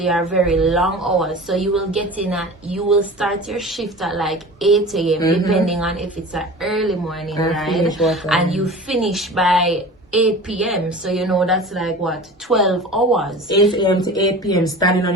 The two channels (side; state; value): both; normal; correlation 0.37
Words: are very long hours. So you will get in you will start your shift at like 8 a.m. depending on if it's an early morning ride, and you finish by 8 p.m. So you know that's like what, 12 hours. 8 a.m. to 8 p.m. standing on